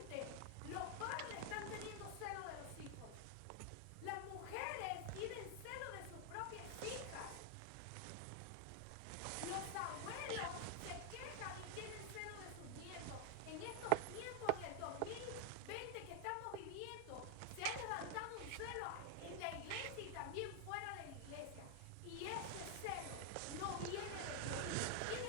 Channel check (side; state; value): both; different; correlation 0.00